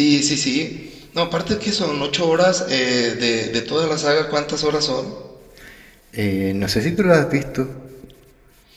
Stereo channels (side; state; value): both; identical; correlation 1.00